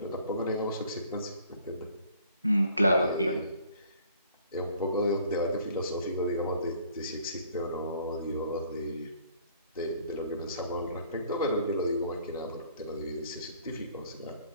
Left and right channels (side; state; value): both; inverted; correlation -0.57